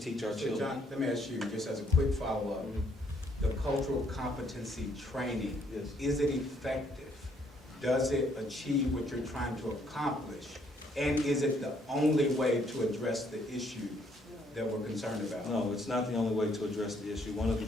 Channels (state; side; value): normal; both; correlation 0.68